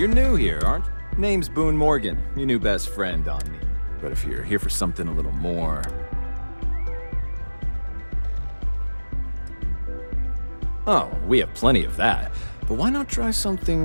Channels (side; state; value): both; inverted; correlation -1.00